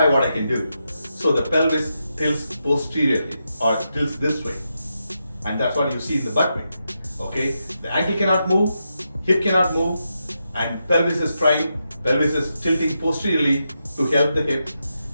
what I can do. So the pelvis tilts posteriorly or tilts this way. And that's what you see in the butt wink. Okay, the ankle cannot move, hip cannot move, and pelvis is trying, pelvis is tilting posteriorly to help the hip,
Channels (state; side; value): inverted; both; correlation -0.85